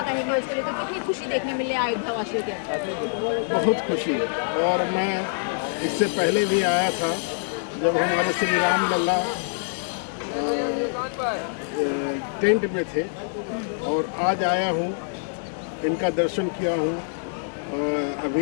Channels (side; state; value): right; silent; digital silence